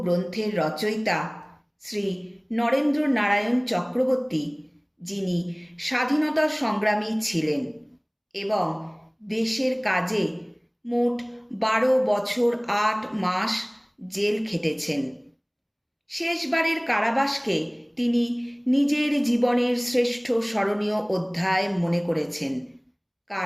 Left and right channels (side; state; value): both; identical; correlation 1.00